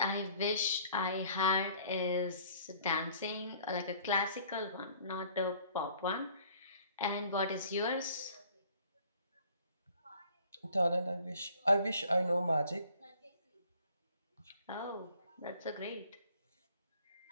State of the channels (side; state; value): both; inverted; correlation -0.55